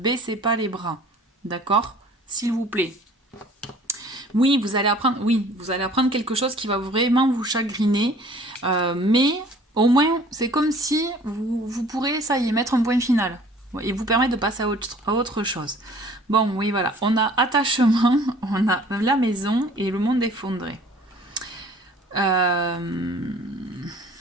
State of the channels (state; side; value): normal; both; correlation 0.51